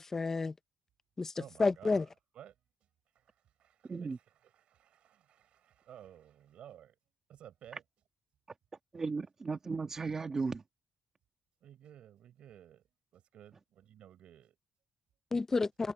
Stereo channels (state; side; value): normal; both; correlation 0.92